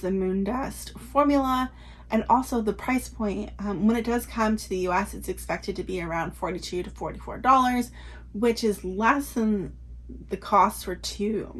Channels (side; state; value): both; identical; correlation 1.00